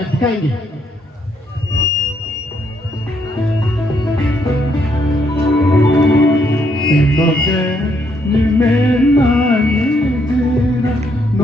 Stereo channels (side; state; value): both; normal; correlation 0.73